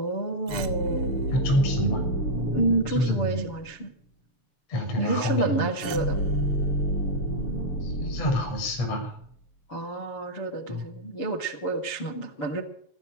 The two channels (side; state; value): right; late; 6.9 ms